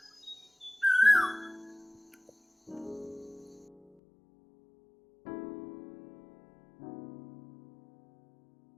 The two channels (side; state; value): right; drops out; at 3.8 s